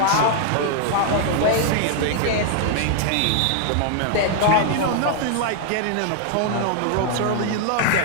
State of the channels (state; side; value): different; both; correlation 0.00